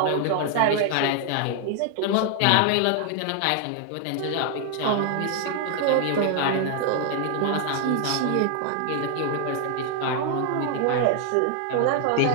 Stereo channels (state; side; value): different; both; correlation 0.00